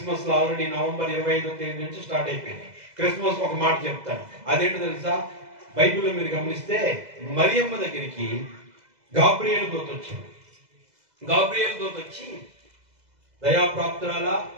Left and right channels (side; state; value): left; late; 2.0 ms